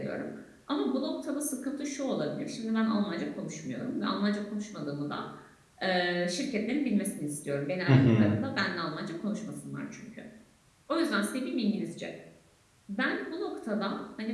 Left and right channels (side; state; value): both; identical; correlation 1.00